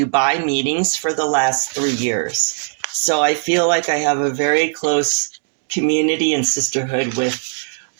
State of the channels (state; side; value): silent; left; digital silence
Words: meetings for the last 3 years. So I feel like I have a very close community and sisterhood with